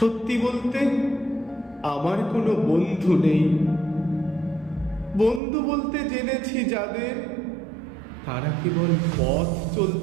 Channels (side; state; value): left; drops out; at 5.4 s